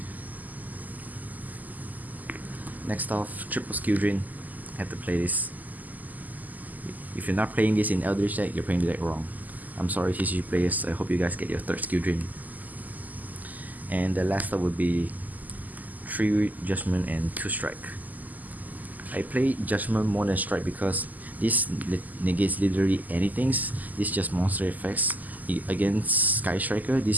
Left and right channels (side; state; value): left; late; 0.081 ms